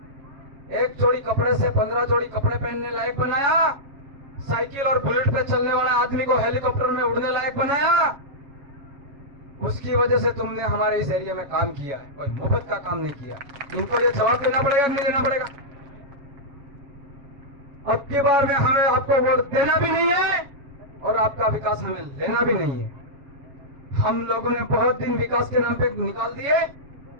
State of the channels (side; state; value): left; late; 7.2 ms